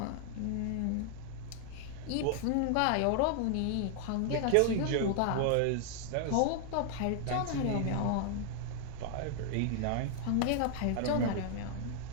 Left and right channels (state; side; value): different; both; correlation 0.00